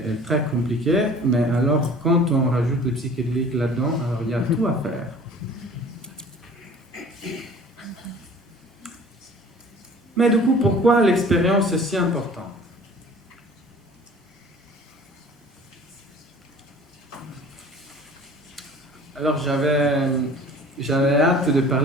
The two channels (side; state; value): both; normal; correlation 0.47